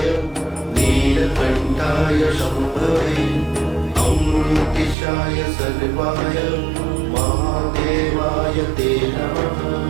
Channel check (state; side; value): drops out; left; at 5.0 s